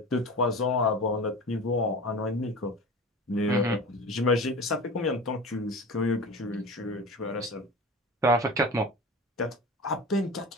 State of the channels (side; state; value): both; normal; correlation 0.33